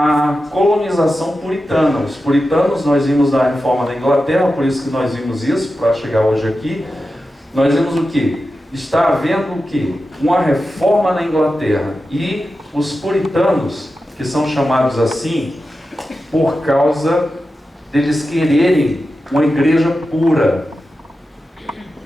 colonização puritana. Os puritanos, nós vimos na reforma da Inglaterra, por isso que nós vimos isso, para chegar hoje aqui. Nós vimos o quê? Está havendo o quê? Uma reforma na Inglaterra. E os puritanos, que são chamados assim, por causa deles quererem uma igreja pura.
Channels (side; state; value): both; normal; correlation 0.92